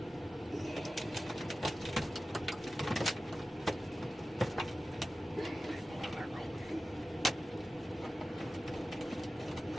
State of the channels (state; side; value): normal; both; correlation 0.95